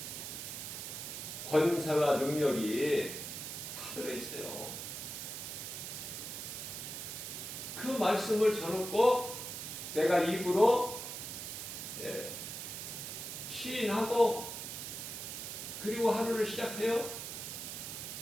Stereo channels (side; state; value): right; noise; hiss, 7 dB below the sound